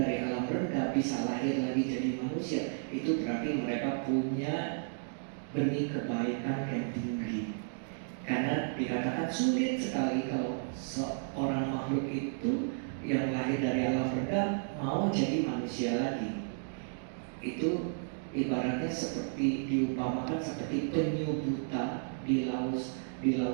alam rendah bisa lahir lagi jadi manusia, itu berarti mereka punya benih kebaikan yang tinggi. Karena dikatakan sulit sekali kalau seorang makhluk itu yang lahir dari alam rendah mau jadi manusia lagi. Itu ibaratnya seperti diumpamakan seperti penyu buta di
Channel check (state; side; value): silent; left; digital silence